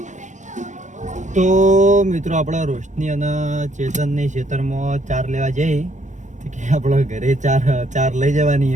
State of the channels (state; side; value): late; left; 0.35 ms